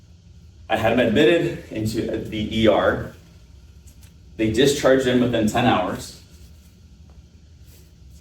I had him admitted into the ER. They discharged him within 10 hours.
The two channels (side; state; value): both; identical; correlation 1.00